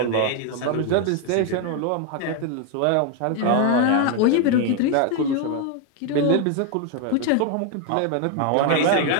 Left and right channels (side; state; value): both; different; correlation 0.01